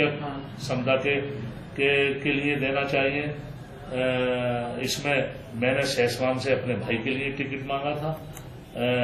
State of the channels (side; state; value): both; identical; correlation 1.00